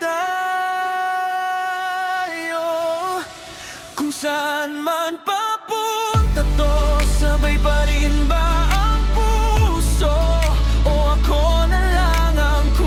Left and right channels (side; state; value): both; identical; correlation 1.00